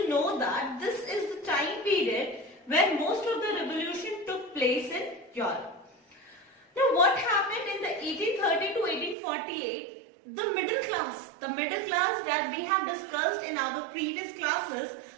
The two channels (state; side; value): drops out; left; at 9.2 s